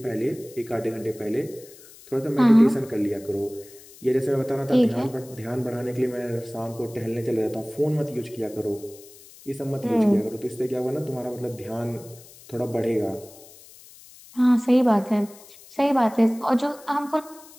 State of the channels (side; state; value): left; noise; hiss, 21 dB below the sound